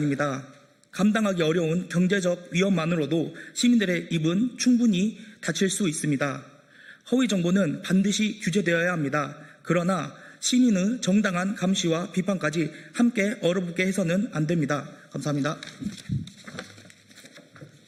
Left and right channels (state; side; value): identical; both; correlation 1.00